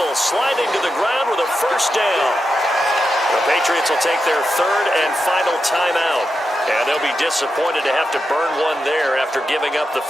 sliding to the ground with a first down. The Patriots will take their 3rd and final timeout. And they'll be disappointed to have to burn one there after giving up the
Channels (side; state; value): both; normal; correlation 0.88